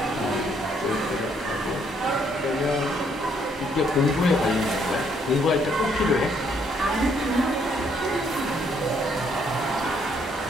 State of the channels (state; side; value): normal; both; correlation 0.69